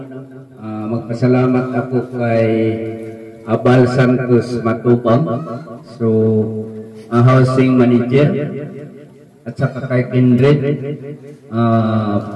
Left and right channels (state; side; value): identical; both; correlation 1.00